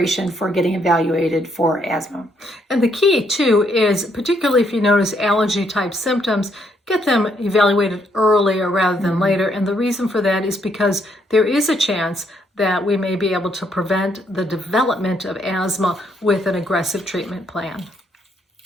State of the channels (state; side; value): normal; both; correlation 0.72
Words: for getting evaluated for asthma. And the key too is, particularly if you notice allergy type symptoms, get them evaluated earlier rather than later. And the reason for that is because there is a chance that we may be able to prevent the development of asthma with an aggressive treatment plan.